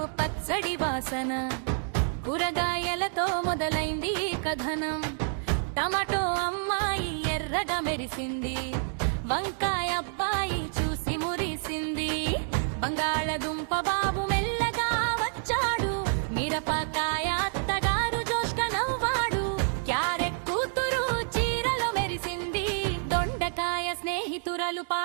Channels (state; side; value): silent; left; digital silence